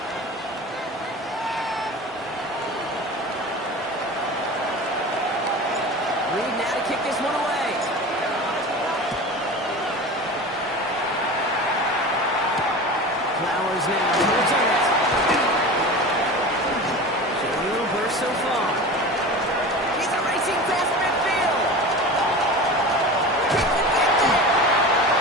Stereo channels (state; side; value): normal; both; correlation 0.32